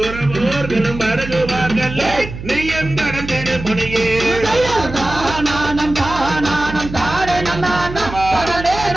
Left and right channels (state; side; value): noise; right; hum, 10 dB below the sound